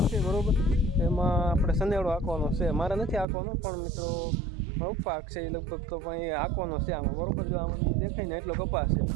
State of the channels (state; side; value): drops out; left; at 3.2 s